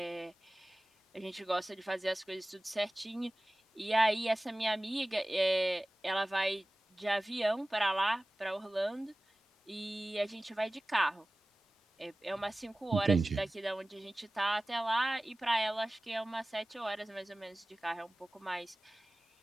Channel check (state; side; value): normal; both; correlation 0.98